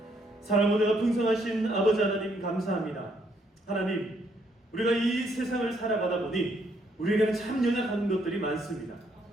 사랑과 내가 풍성하신 아버지 하나님 감사합니다. 하나님, 우리가 이 세상을 살아가다 보니 우리에게는 참 연약한 것들이 많습니다.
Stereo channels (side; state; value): both; normal; correlation 0.71